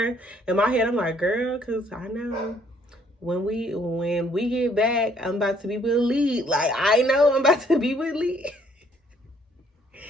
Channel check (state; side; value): normal; both; correlation 0.64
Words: In my head, I'm like, girl, because I know when we get back, I'm about to be with Lee. Like, I know I'm about to be with Lee.